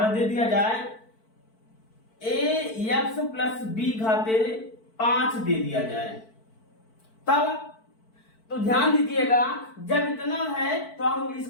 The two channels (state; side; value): late; right; 4.5 ms